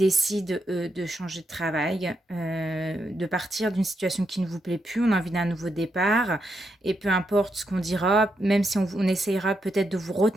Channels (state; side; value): normal; both; correlation 0.82